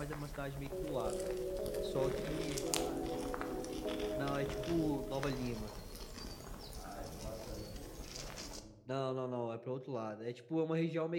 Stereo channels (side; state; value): both; identical; correlation 1.00